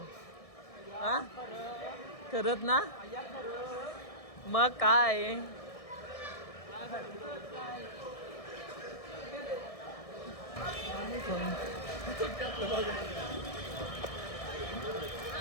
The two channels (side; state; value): right; late; 1.6 ms